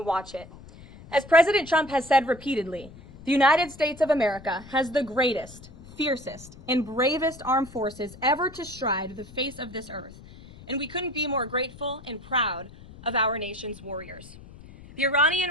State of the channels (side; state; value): left; noise; rumble, 19 dB below the sound